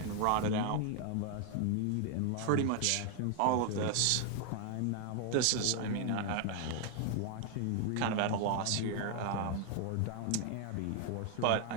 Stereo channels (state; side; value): different; both; correlation 0.00